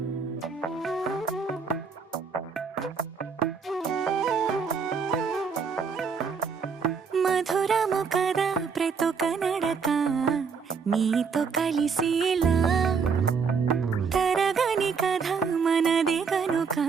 మధురము కదా ప్రతొక నడక నీతో కలిసేలా తరగని కథ మనదే కనుక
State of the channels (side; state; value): left; quieter; 5.6 dB